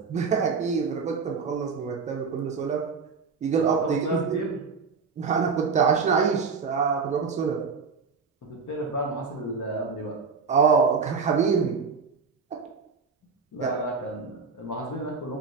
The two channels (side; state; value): left; quieter; 5.2 dB